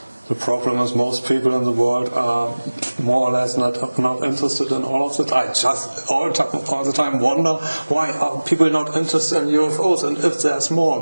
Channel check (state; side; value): inverted; both; correlation -1.00